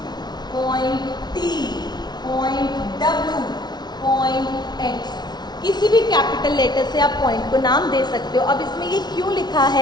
point T, point W, point X, किसी भी कैपिटल लेटर से आप पॉइंट को नाम दे सकते हो। अब इसमें ये क्यों लिखा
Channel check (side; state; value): right; late; 0.20 ms